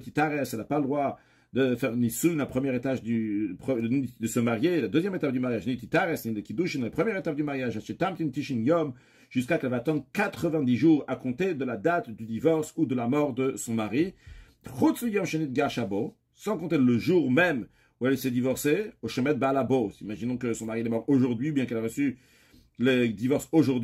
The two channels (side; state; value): both; identical; correlation 1.00